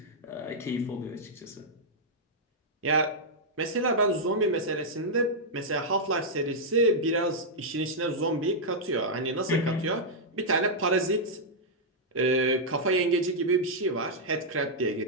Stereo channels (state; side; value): normal; both; correlation -0.07